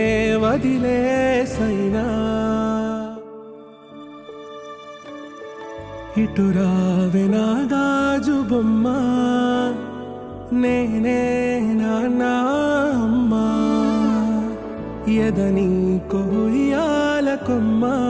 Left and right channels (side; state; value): both; identical; correlation 1.00